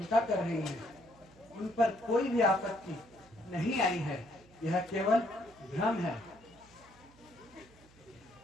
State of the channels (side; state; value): right; noise; hum, 26 dB below the sound